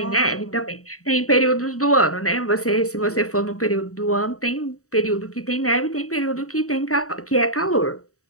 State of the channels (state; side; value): late; right; 0.65 ms